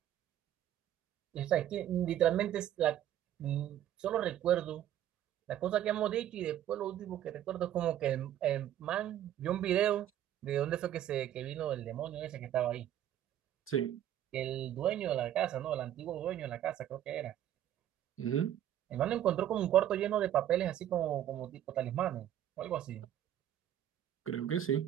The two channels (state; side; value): quieter; left; 11.5 dB